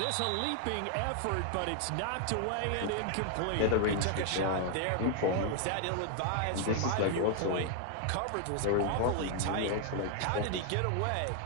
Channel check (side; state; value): both; different; correlation 0.00